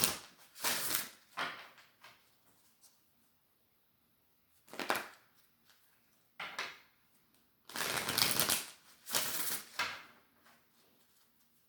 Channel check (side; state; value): both; identical; correlation 1.00